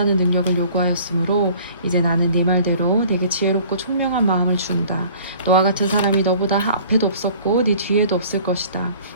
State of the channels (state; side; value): inverted; both; correlation -0.50